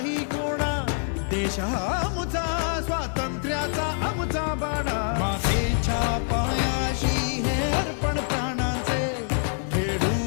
कोणा. देश हा आमचा स्वातंत्र्याचा आमचा बाणा. मातेच्या पाया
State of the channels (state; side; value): silent; right; 57 dB below the other